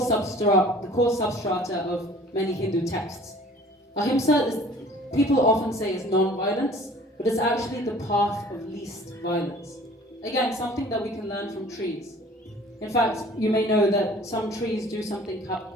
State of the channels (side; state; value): both; normal; correlation 0.49